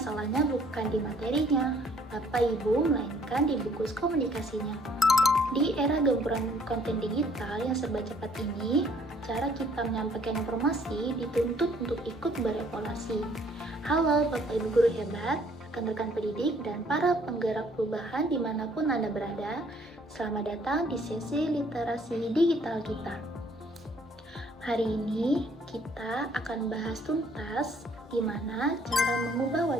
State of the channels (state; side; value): normal; both; correlation 0.62